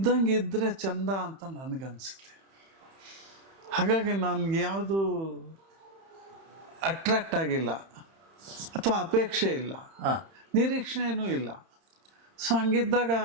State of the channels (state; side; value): late; left; 31 ms